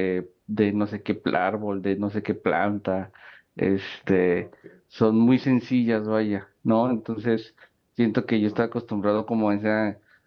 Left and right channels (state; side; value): identical; both; correlation 1.00